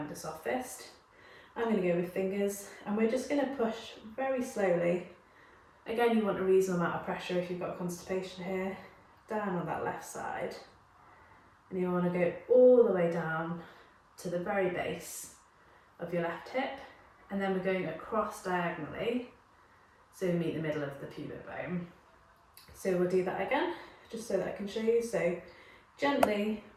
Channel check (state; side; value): identical; both; correlation 1.00